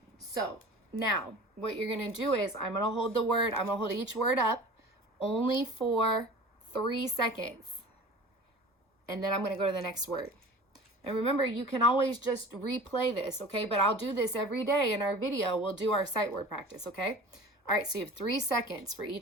So now what you're going to do is I'm going to hold each word up only for 3 seconds. And then I'm going to go to the next word. And remember, you can always just replay this, okay? But I'll do this every day in our video. We'll do our sight word practice, okay? All right, so you have 3 seconds for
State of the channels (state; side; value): normal; both; correlation 0.40